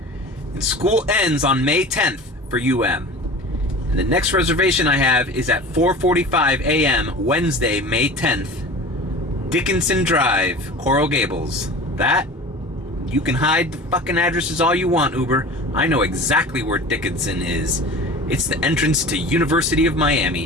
And school ends on May 10th for UM. And the next reservation I have is at 4:45 a.m. Wednesday, May 10th. Dickinson Drive, Coral Gables. That, you can hide the fucking addresses all you want, Uber. I know exactly where Dickinson is. It's the entrance to University of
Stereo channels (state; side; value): normal; both; correlation 0.37